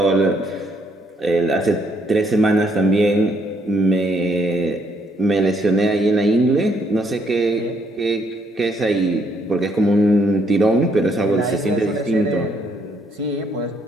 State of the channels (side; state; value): both; normal; correlation 0.70